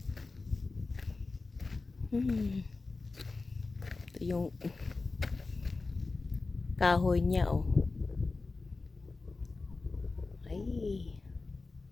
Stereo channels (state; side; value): quieter; right; 3.7 dB